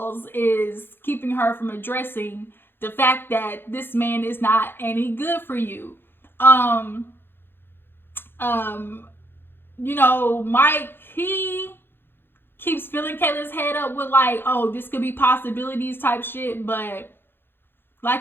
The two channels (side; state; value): right; late; 0.10 ms